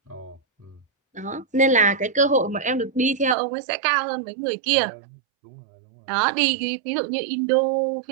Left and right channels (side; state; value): left; drops out; at 3.4 s